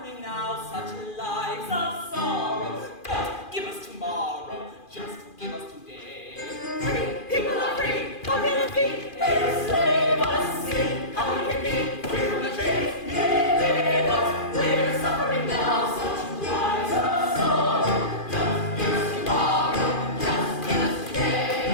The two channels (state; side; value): late; right; 2.4 ms